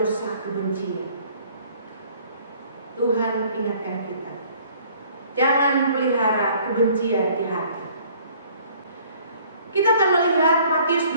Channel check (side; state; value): both; inverted; correlation -0.57